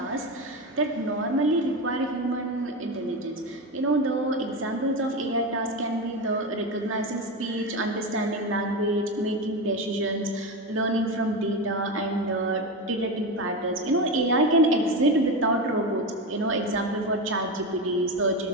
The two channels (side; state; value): both; normal; correlation 0.18